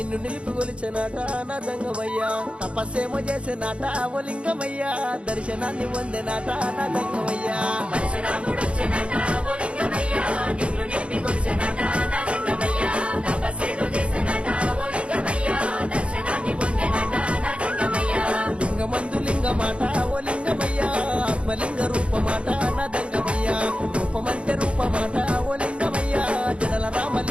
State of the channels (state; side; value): late; left; 0.059 ms